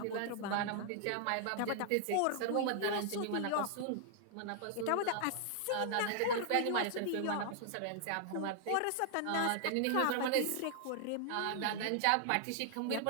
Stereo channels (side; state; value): both; different; correlation 0.00